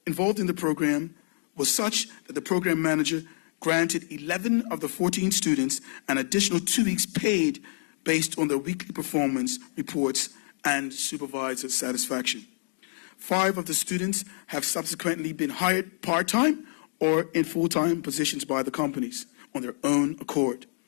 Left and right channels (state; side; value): silent; right; digital silence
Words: involved in the program was such that the program manager granted 11 of the 14 students an additional 2 weeks paid based on their weekly performance reports and supervisor satisfaction. 5 of the students have subsequently been hired part-time or in full-time positions by the companies on their own accord.